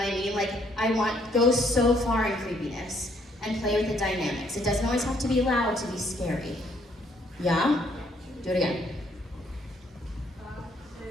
I mean? Like go so far in creepiness and play with the dynamics. It doesn't always have to be loud to be scary. Yeah? Do it again. 5, 6,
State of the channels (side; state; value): both; normal; correlation 0.68